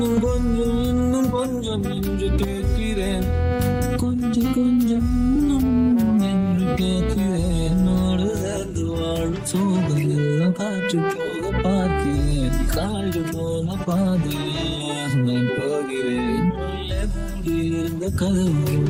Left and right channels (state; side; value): identical; both; correlation 1.00